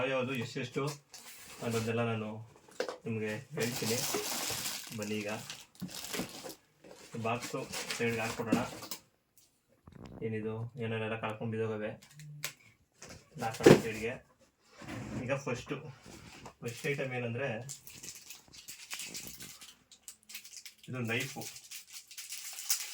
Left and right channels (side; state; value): both; identical; correlation 1.00